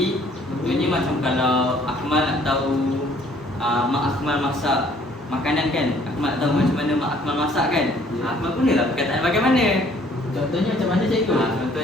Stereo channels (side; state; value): both; normal; correlation 0.59